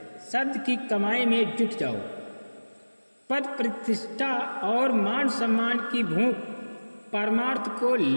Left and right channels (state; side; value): inverted; both; correlation -1.00